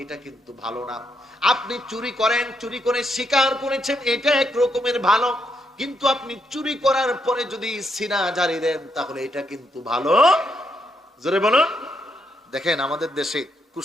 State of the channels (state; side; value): normal; both; correlation 0.78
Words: এটা কিন্তু ভালো না। আপনি চুরি করেন, চুরি করে স্বীকার করেছেন, এটা এক রকমের ভালো, কিন্তু আপনি চুরি করার পরে যদি সিনা জারি দেন, তাহলে এটা কিন্তু ভালো। জোরে বলুন। দেখেন আমাদের দেশে